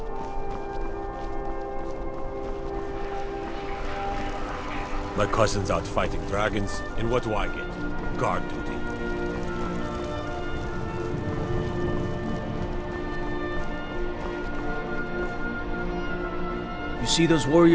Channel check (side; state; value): both; identical; correlation 1.00